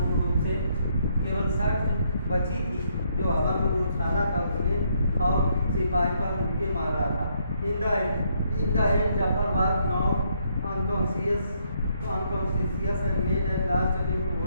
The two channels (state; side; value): inverted; both; correlation -0.72